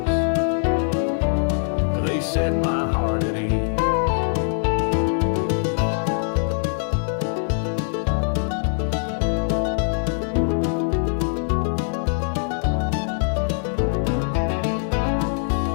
they set my heart at ease.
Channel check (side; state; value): right; silent; digital silence